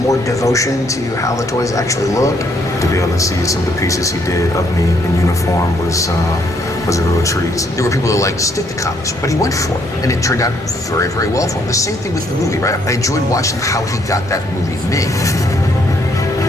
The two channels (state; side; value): normal; both; correlation 0.70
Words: devotion to how the toys actually look. To be able to see some of the pieces he did of me in uniform was a real treat. There were people who liked to stick to comics, but he went for it, and it turned out very, very well for him. The same thing with the movie, right? I enjoyed watching how he got that movie made.